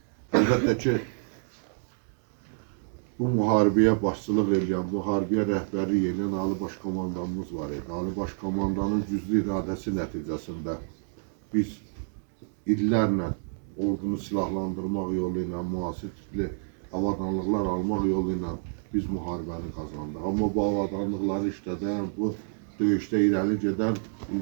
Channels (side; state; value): left; silent; 59 dB below the other